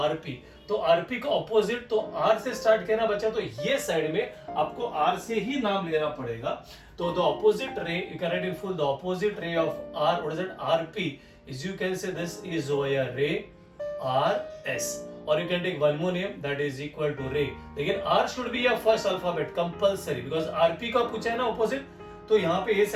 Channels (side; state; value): both; identical; correlation 1.00